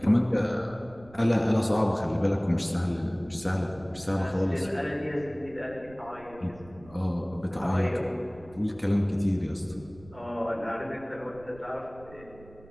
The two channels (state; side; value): noise; right; rumble, 21 dB below the sound